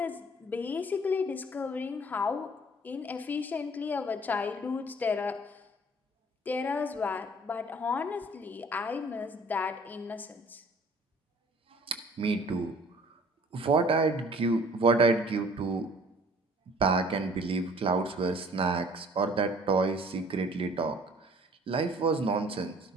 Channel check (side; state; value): both; normal; correlation 0.52